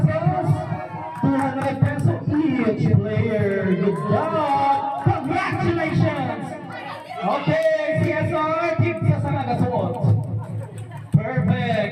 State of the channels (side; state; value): both; identical; correlation 1.00